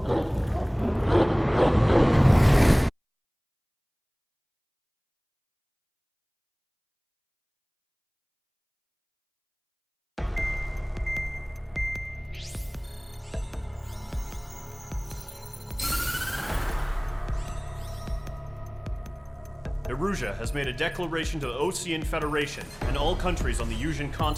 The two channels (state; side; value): identical; both; correlation 1.00